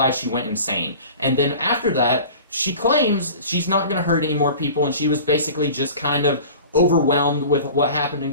she went insane. And then after that, she claims she's not going to hurt any more people, and she was basically just kind of overwhelmed with what happened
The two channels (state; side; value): inverted; both; correlation -0.40